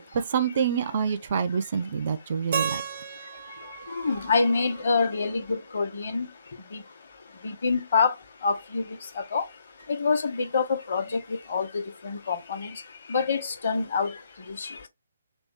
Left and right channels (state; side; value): inverted; both; correlation -0.72